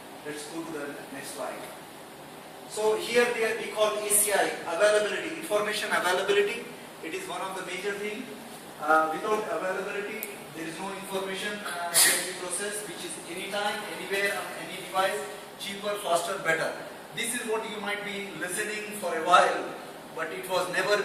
Let's go to the next slide. So here we call ACI, availability, information availability. It is one of the major things. Without availability, there is no information can be processed, which is anytime, anywhere, on any device, cheaper, faster, better. This is what you might be listening for a while, but it was never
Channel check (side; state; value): both; identical; correlation 1.00